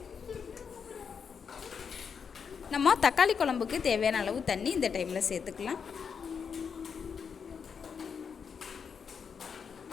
நம்ம தக்காளி குழம்புக்கு தேவையான அளவு தண்ணி இந்த டைமில் சேர்த்துக்கலாம்.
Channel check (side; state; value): right; quieter; 6.4 dB